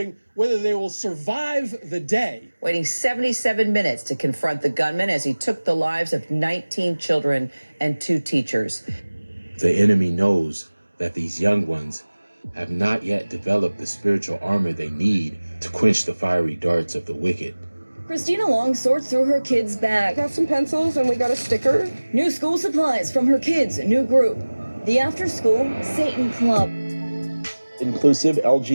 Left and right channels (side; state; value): both; inverted; correlation -1.00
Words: whether they will survive the day. Waiting 77 minutes to confront the gunman as he took the lives of 19 children and 2 teachers. The enemy knows that these young ones have not yet developed the spiritual armor they need to quench the fiery darts of the wicked. Christina Long sorts through her kids' bag. Got some pencils and we got a sticker. New school supplies from her kids' new group, the After School Satan Club. Inclusive